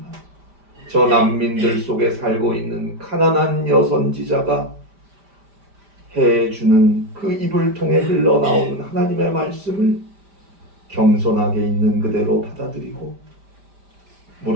저 난민들 속에 살고 있는 가난한 여선지자가 해주는 그 입을 통해 흘러나오는 하나님의 말씀을 겸손하게 있는 그대로 받아들이고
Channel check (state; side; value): late; left; 5.1 ms